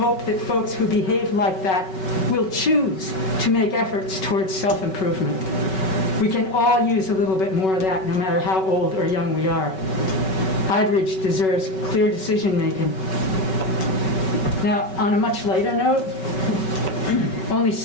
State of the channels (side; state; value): right; late; 5.3 ms